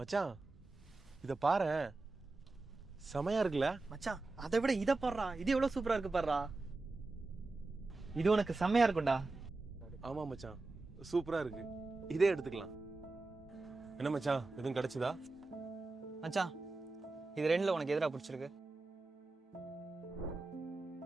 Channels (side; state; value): left; quieter; 3.4 dB